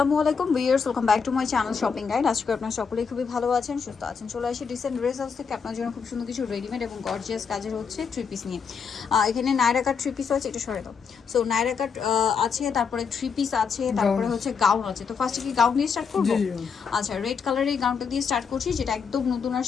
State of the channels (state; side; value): quieter; right; 6.1 dB